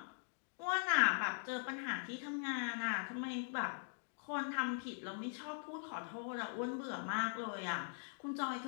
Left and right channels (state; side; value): silent; right; digital silence